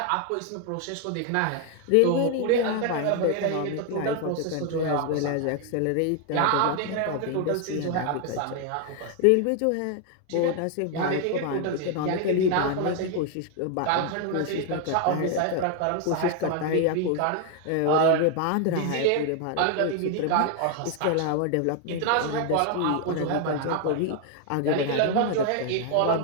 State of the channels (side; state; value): both; different; correlation 0.00